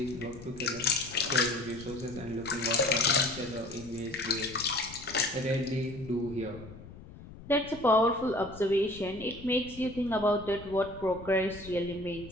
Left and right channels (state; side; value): noise; left; rumble, 16 dB below the sound